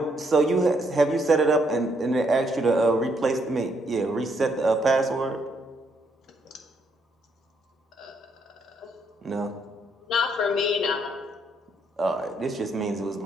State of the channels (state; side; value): normal; both; correlation 0.73